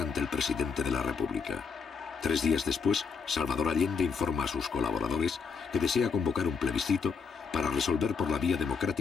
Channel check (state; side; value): quieter; right; 5.6 dB